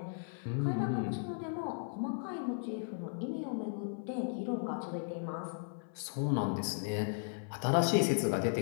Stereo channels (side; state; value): right; silent; 54 dB below the other